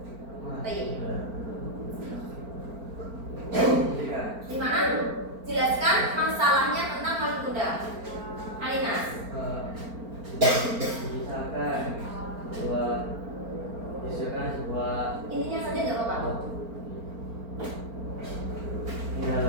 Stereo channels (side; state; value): left; late; 4.4 ms